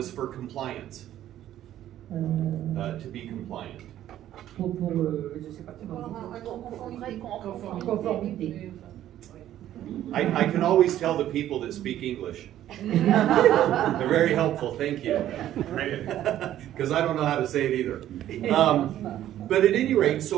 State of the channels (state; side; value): quieter; left; 12.3 dB